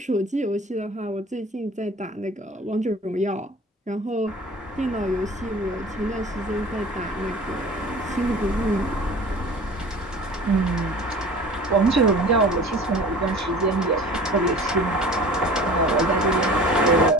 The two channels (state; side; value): normal; both; correlation 0.42